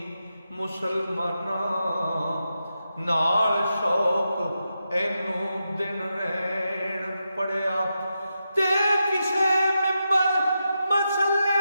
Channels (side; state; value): both; inverted; correlation -0.87